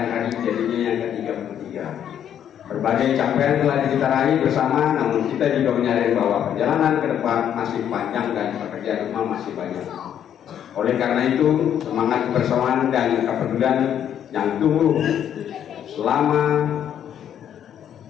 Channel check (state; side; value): quieter; right; 9.6 dB